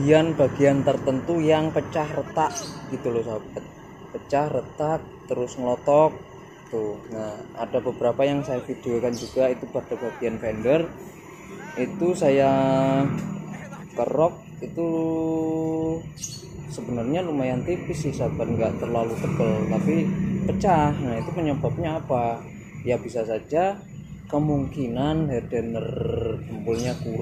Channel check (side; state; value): both; identical; correlation 1.00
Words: tertentu yang pecah retak gitu loh sahabat, pecah retak terus ngelotok tuh. Nah, ada beberapa yang saya videokan juga, itu pada bagian fender itu saya kerok, itu sebenarnya lumayan tipis sih sahabat, nggak terlalu tebal tapi pecah. Nah, itu penyebabnya apa? Ya bisa saja kemungkinan hardener jempolnya